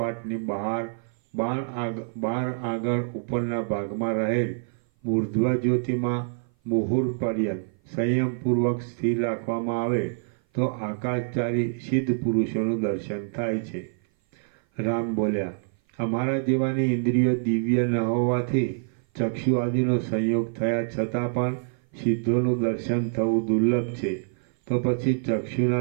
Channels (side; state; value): left; silent; 56 dB below the other